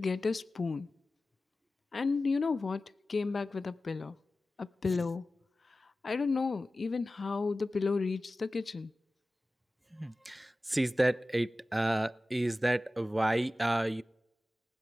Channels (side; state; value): both; normal; correlation 0.95